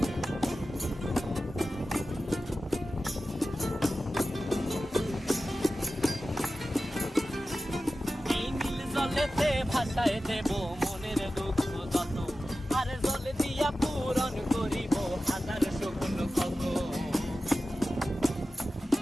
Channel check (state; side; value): normal; both; correlation 0.94